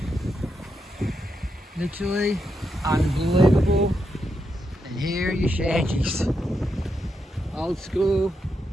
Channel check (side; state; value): both; normal; correlation 0.83